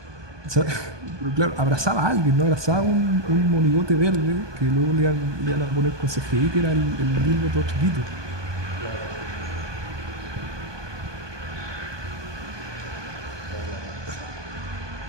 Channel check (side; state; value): left; late; 1.2 ms